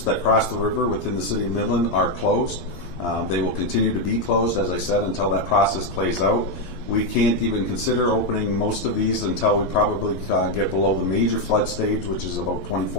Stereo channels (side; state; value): right; late; 11 ms